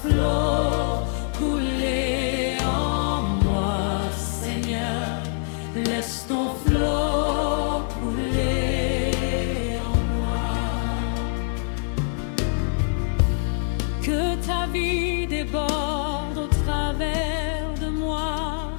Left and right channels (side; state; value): right; silent; digital silence